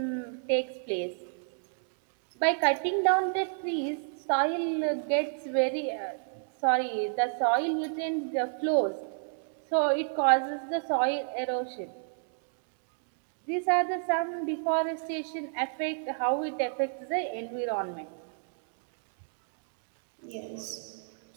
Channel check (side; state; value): left; silent; digital silence